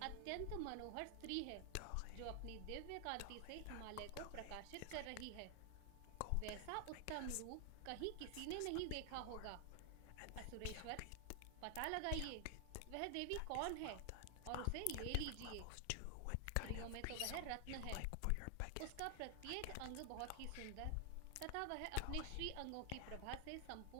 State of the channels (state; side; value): different; both; correlation 0.00